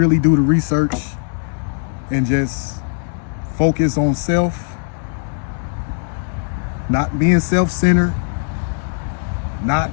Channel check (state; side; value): silent; right; digital silence